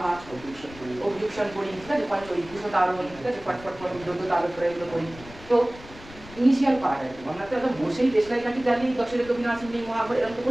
অভিযুকশন করি, ঠিক আছে, পঞ্চই দুশো তারণ, ঠিক আছে, ফটফট যজ্ঞ তারক করে এগুলো করি। তো ইনিশিয়াল পার্ট আর কি, আমরা তো একদম বসেই দেশলাই কাঠি জ্বালিয়ে দশের কবি নাসিম নেই মহাভারত এরকম তো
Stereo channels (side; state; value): left; noise; rumble, 18 dB below the sound